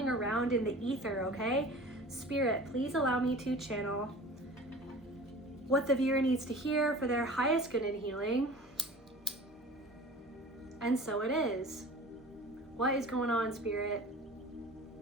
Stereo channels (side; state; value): both; normal; correlation 0.41